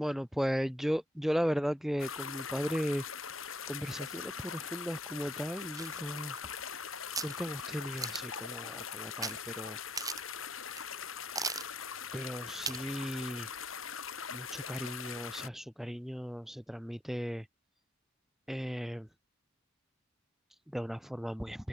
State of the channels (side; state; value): both; normal; correlation 0.76